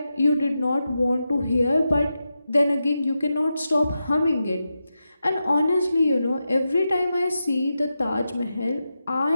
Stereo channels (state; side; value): inverted; both; correlation -0.89